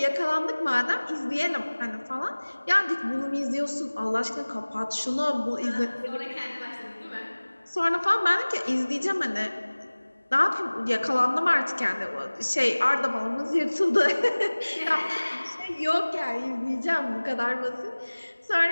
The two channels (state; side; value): inverted; both; correlation -1.00